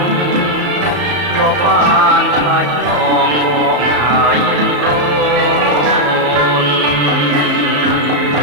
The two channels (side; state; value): left; late; 34 ms